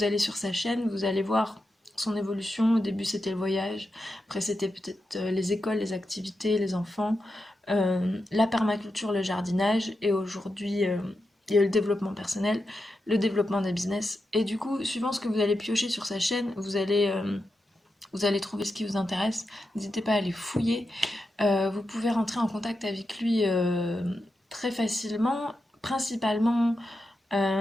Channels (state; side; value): normal; both; correlation 0.88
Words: allez sur sa chaîne, vous allez voir son évolution. Au début, c'était le voyage, après, c'était peut-être les écoles, les activités, les enfants, la permaculture, le jardinage, et aujourd'hui, il y a le développement personnel, le développement des business. Et du coup, suivant ce que vous allez piocher sur sa chaîne, vous allez trouver ce qui vous intéresse. N'hésitez pas à aller fouiller. Vous pouvez rentrer en contact avec lui très facilement, principalement